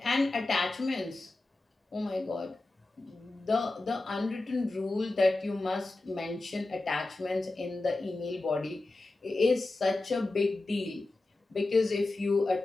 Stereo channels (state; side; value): quieter; right; 3.0 dB